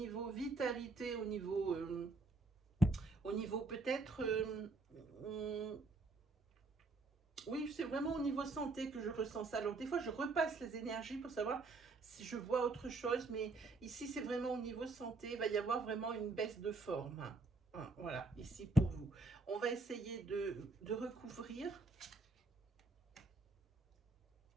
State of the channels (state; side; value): quieter; left; 3.7 dB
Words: vitalité, au niveau peut-être, oui, c'est vraiment au niveau santé que je ressens ça. Alors des fois, je repasse les énergies pour savoir si je vois autre chose, mais ici, c'est vraiment au niveau santé. Il va y avoir vraiment une baisse de forme. Hein, voilà, ici pour vous. On va essayer de recouvrir.